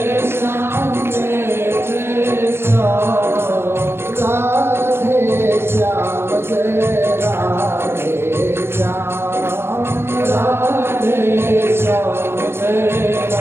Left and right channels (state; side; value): late; left; 0.12 ms